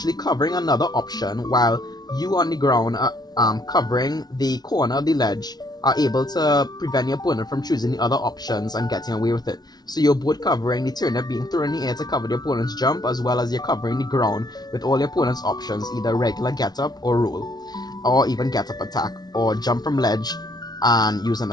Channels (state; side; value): late; right; 0.19 ms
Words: covering another option while you on the ground covering the corner of the ledge are able to prevent the opponent from choosing the other options and getting away with it. So you're both covering the turnip being thrown in the air to cover the opponent's jump, as well as you're covering the ground with all the opponent's options, either regular get up or roll, or even get up attack, or jump from ledge and use an